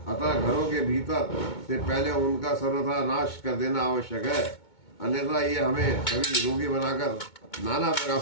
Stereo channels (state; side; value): late; right; 2.2 ms